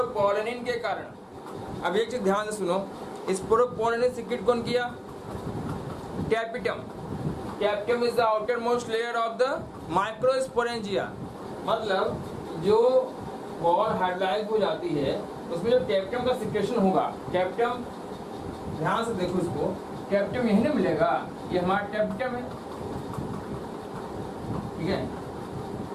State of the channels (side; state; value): both; identical; correlation 1.00